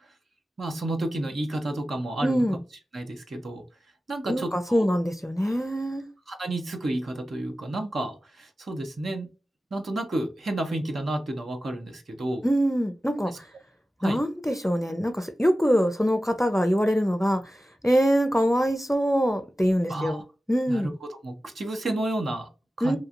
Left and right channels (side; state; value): both; normal; correlation 0.94